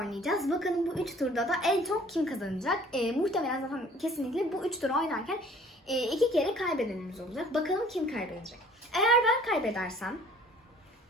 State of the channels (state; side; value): normal; both; correlation 0.53